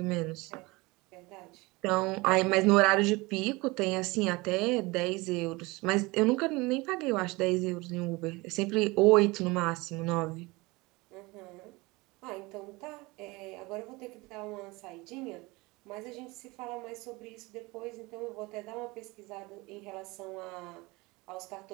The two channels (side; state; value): left; quieter; 23.4 dB